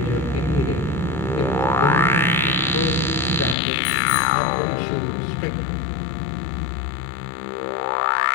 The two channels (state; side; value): drops out; right; at 3.6 s